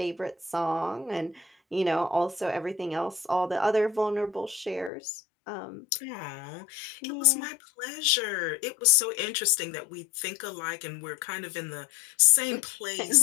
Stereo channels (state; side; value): drops out; right; at 4.9 s